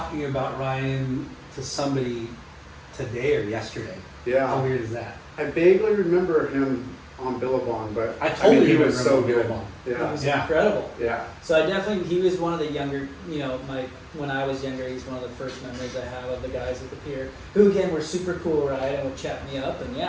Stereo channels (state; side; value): identical; both; correlation 1.00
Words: about Ryan to somebody today or yesterday. How Yeah, weird is that? I vaguely remember him on Billabong, but I totally he was remember so good. Billabong. He Yeah, was Yeah. incredible. yeah. So I definitely, he was one of the younger, when I was younger, he's one of the first memories I have of the guys at the pier, who again were super cool, right, and would chat me up, and